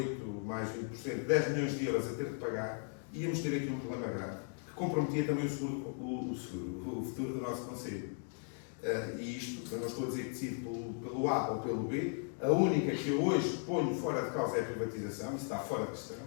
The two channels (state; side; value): silent; right; 53 dB below the other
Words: mais 20%, 10 milhões de euros a ter de pagar, íamos ter aqui um problema grave, que comprometia também o futuro do nosso Conselho. E isto, eu não estou a dizer que decido pelo A ou pelo B, a única que eu hoje ponho fora de causa é a privatização, isso está fora de questão.